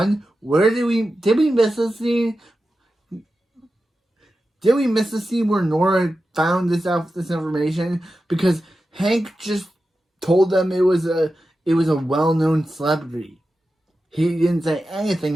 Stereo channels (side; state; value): both; normal; correlation 0.92